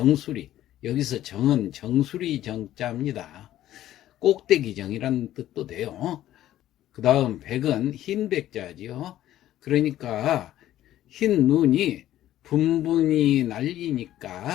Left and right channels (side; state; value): right; quieter; 13.2 dB